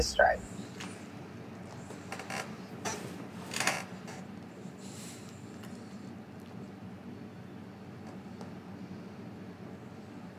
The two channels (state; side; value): identical; both; correlation 1.00